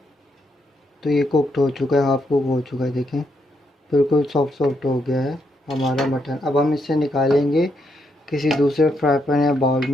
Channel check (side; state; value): both; normal; correlation 0.78